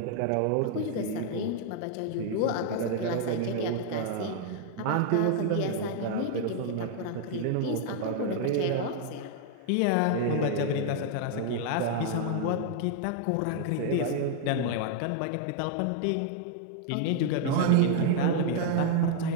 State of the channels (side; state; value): both; different; correlation 0.00